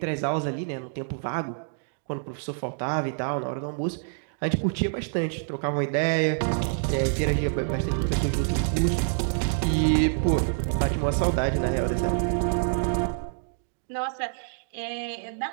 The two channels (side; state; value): left; silent; digital silence